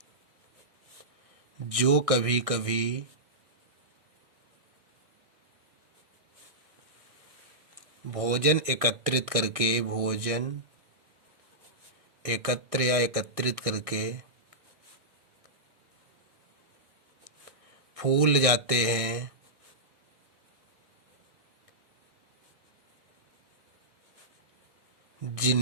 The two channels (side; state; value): left; late; 1.6 ms